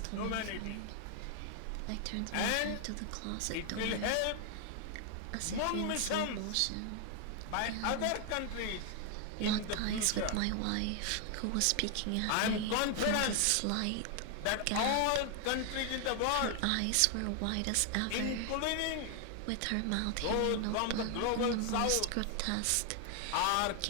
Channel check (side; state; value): both; different; correlation 0.00